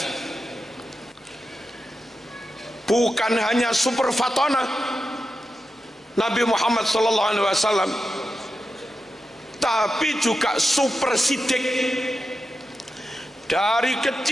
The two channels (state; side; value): normal; both; correlation 0.90